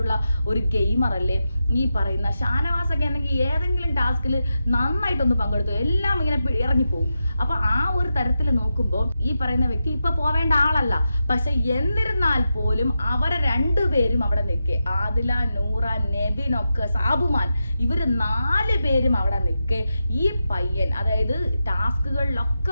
ഒരു ഗെയിമർ അല്ലേ ഈ പറയുന്ന ഷാനവാസൊക്കെ? ആണെങ്കിൽ ഏതെങ്കിലും ടാസ്കിൽ നന്നായിട്ടൊന്ന് പങ്കെടുത്തു, എല്ലാം ഇങ്ങനെ ഇറങ്ങിപ്പോവും. അപ്പൊ ആ ഒരു തരത്തിൽ നോക്കുമ്പോൾ ഈ പറയുന്ന വ്യക്തി ഇപ്പൊ പോവേണ്ട ആളല്ല. പക്ഷെ എന്നിരുന്നാൽ പോലും അവരെ രണ്ടുപേരും അവിടെ നിൽക്കേ, ആദില, നൂറ, നെവിനൊക്കെ, സാബുമാൻ, ഇവര് 4 പേരും അവിടെ നിൽക്കേ ഈ പയ്യൻ, അതായത്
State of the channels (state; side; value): inverted; both; correlation -0.89